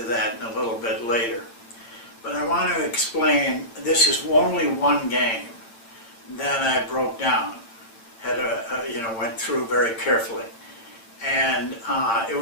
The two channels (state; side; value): late; right; 8.8 ms